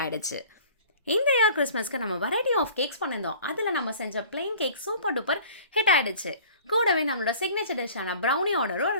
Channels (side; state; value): both; inverted; correlation -0.47